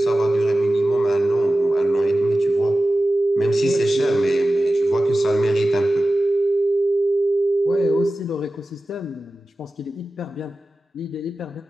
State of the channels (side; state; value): both; normal; correlation 0.95